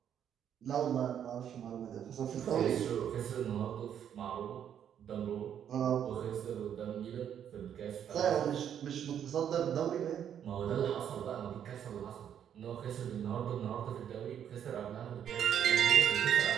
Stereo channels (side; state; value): left; quieter; 9.2 dB